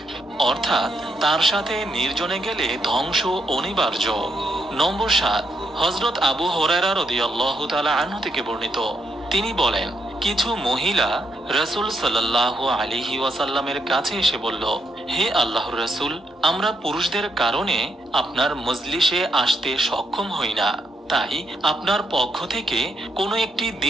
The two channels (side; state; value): both; normal; correlation 0.78